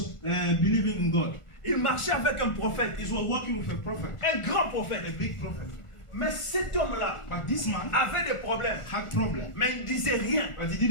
believing in God. Il marchait avec un prophète, He was working with a prophet, un grand prophète. a big prophet. Mais cet homme-là But this man avait des problèmes, had problem, mais il ne disait rien. but he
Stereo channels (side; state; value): right; late; 1.4 ms